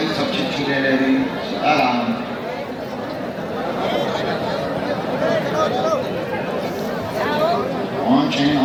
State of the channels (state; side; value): identical; both; correlation 1.00